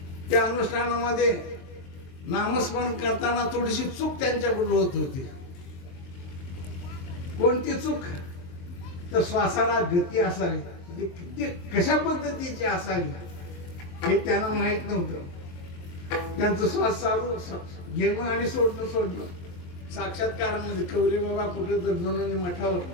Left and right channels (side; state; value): right; late; 23 ms